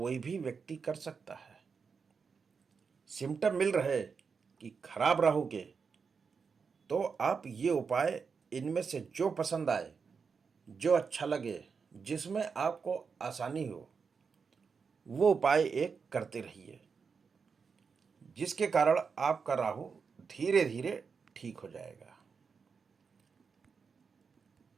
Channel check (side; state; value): left; quieter; 5.6 dB